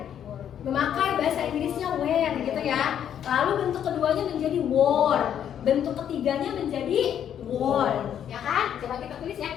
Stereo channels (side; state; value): right; quieter; 9.5 dB